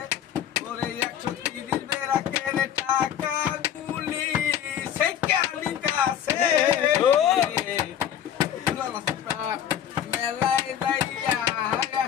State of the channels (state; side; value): quieter; right; 9.8 dB